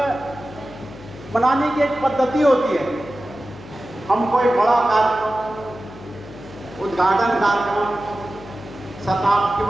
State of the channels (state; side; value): noise; left; hum, 17 dB below the sound